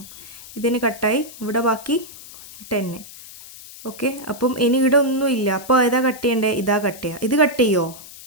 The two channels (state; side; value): noise; left; hiss, 17 dB below the sound